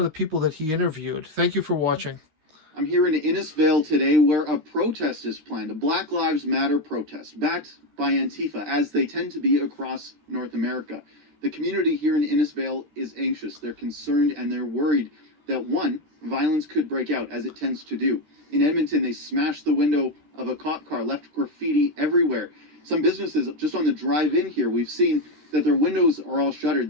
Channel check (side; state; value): left; late; 13 ms